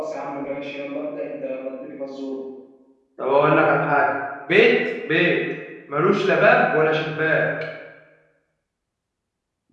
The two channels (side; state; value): both; identical; correlation 1.00